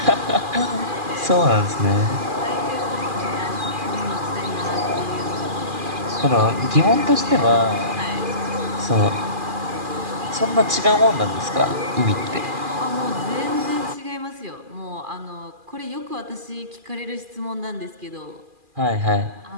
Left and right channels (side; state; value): left; late; 2.4 ms